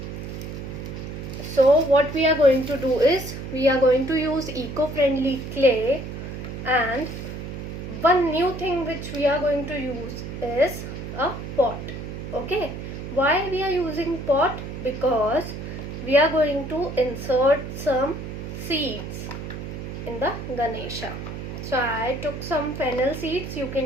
what we are going to do is we are going to use eco-friendly clay, and one new thing which we are going to use is a pot. Okay, why we are using pot? Because we are going to insert some seeds in the ganesha. So I took some fennel seeds. You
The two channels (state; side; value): noise; right; hum, 8 dB below the sound